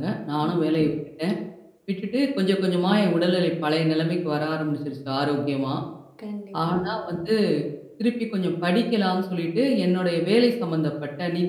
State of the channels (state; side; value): identical; both; correlation 1.00